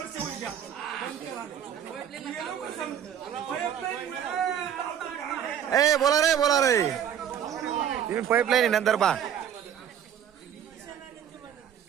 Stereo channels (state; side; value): quieter; left; 9.3 dB